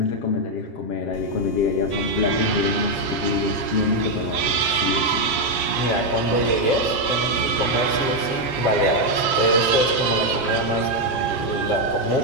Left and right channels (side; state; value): right; late; 7.4 ms